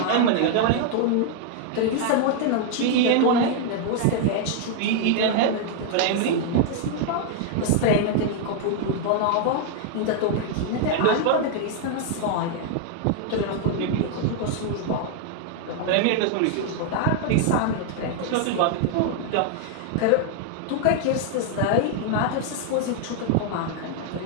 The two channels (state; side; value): different; both; correlation 0.00